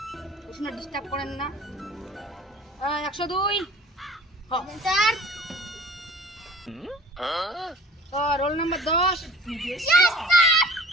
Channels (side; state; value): both; normal; correlation 0.47